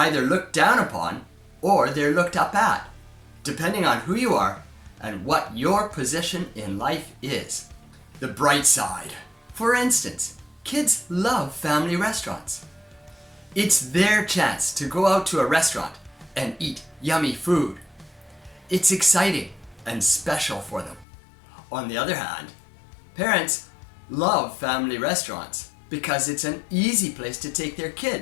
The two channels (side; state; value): right; drops out; at 21.1 s